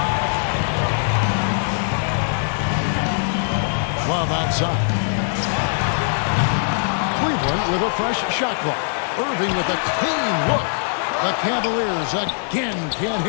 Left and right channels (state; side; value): silent; right; 56 dB below the other